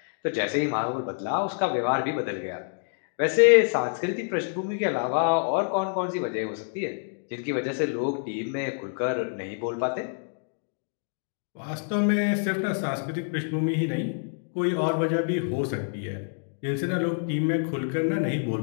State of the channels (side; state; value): right; silent; digital silence